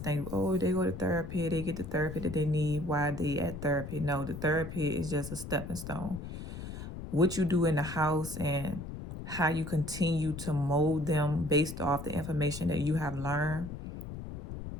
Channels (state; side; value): noise; left; rumble, 9 dB below the sound